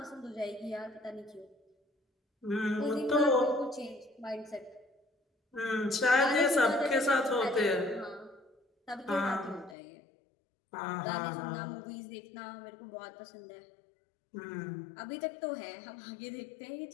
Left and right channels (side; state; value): right; drops out; at 9.8 s